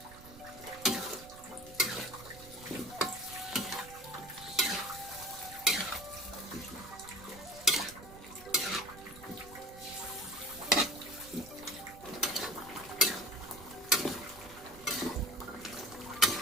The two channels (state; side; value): noise; right; rumble, 18 dB below the sound